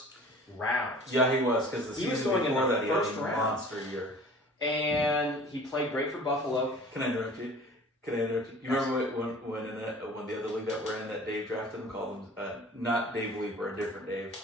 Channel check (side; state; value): both; normal; correlation 0.45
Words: round. Yeah, he was, because the season before that he had a monster year. And he played great for Buffalo. Can I interrupt you? You remember when the other league that we're in, that Dave drafted him, called him, not Dave Leeper, a different Dave,